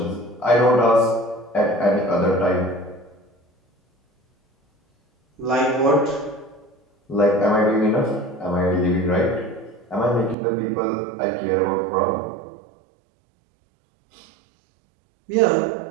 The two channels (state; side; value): drops out; left; at 10.4 s